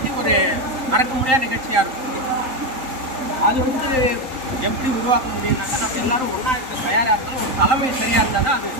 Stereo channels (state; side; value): late; left; 3.8 ms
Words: ஒரு மறக்க முடியாத நிகழ்ச்சியாக இருக்கும். அது வந்து எப்படி உருவாக்க முடியும்னாக்கா நம்ம எல்லாரும் ஒன்றா இருக்க தயாராக இருந்தாலும் ஒரு தலைமை சரியாக இருந்தால் தான் அது